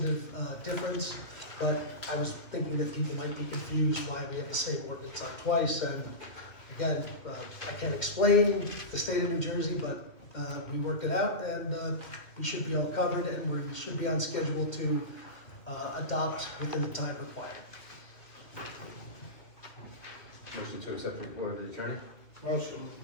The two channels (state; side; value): late; right; 2.4 ms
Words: difference, but I was thinking that people might be confused why we have the same ordinance on twice, and again, I can't explain the state of New Jersey, but we worked it out, and we should be all covered, and we should be on schedule to adopt within the time required. Motion to accept the report of the attorney. Motion.